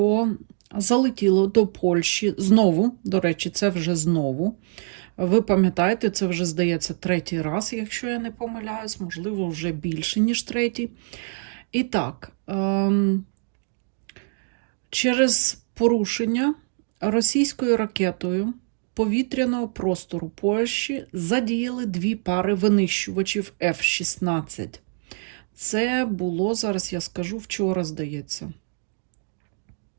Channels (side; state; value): left; silent; 62 dB below the other